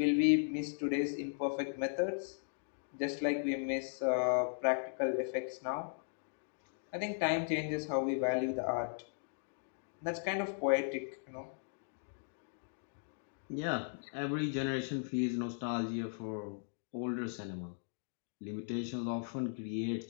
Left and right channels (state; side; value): silent; right; digital silence